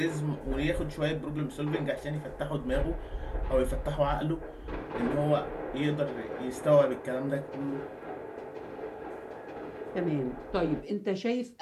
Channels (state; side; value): identical; both; correlation 1.00